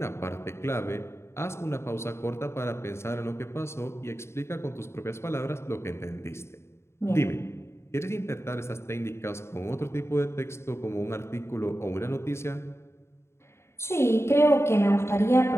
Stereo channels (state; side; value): late; right; 0.13 ms